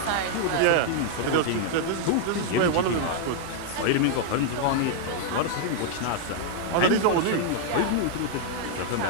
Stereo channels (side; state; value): both; different; correlation 0.00